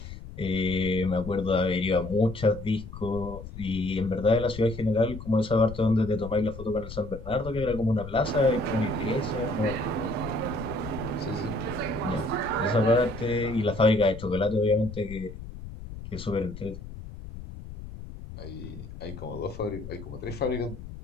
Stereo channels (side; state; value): left; noise; rumble, 12 dB below the sound